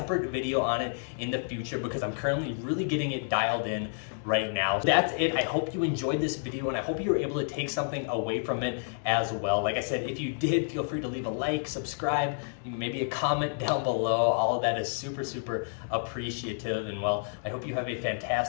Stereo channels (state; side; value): silent; right; digital silence